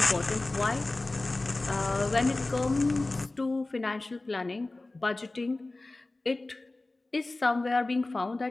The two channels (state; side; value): quieter; right; 3.0 dB